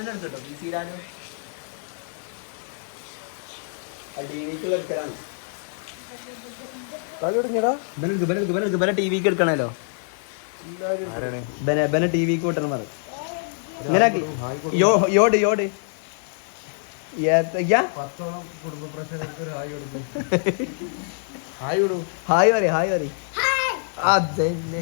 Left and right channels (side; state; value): right; silent; digital silence